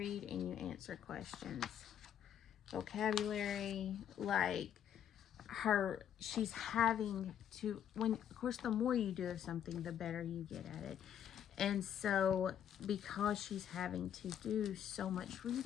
and you answer questions. Vocabulary, like she's having to, of course, the more you do of something, the better you get at it. And so because she's having to do so much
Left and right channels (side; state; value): right; quieter; 9.6 dB